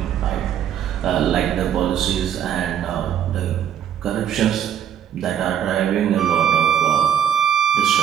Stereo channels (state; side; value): quieter; left; 9.4 dB